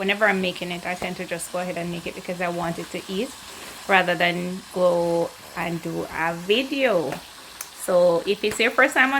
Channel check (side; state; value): both; identical; correlation 1.00